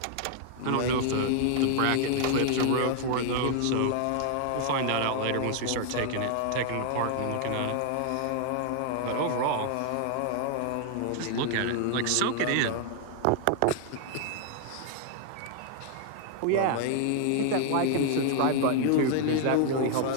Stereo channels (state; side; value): different; both; correlation 0.00